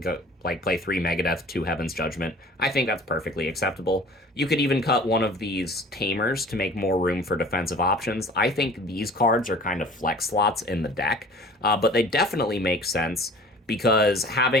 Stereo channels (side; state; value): both; normal; correlation 0.45